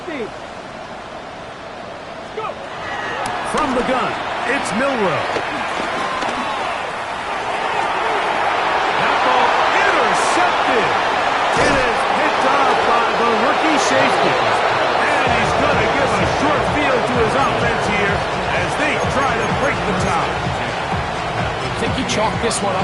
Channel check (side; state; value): both; identical; correlation 1.00